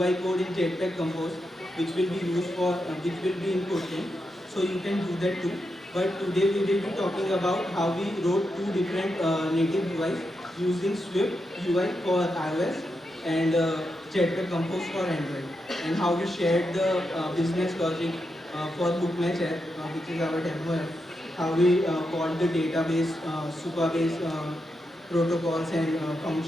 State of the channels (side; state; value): both; normal; correlation 0.85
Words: code in Jetpack Compose, which will be used for which will be in Kotlin, so you can do that too. But today we will be talking about how we wrote two different native UIs using Swift UI for iOS and Jetpack Compose for Android, and how we shared the business logic for Bookmatch app, which is our demo app, how we called the database, Supabase protocols and